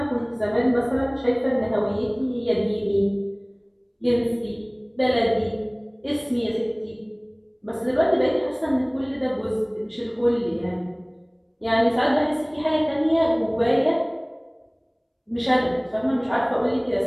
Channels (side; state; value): both; identical; correlation 1.00